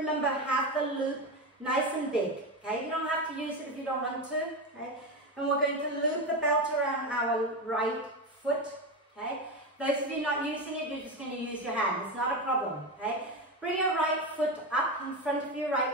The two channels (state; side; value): normal; both; correlation 0.17